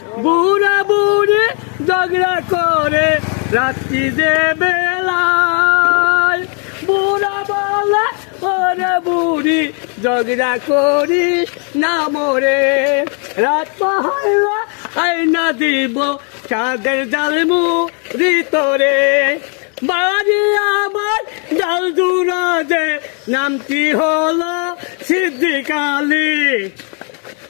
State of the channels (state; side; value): quieter; right; 40.0 dB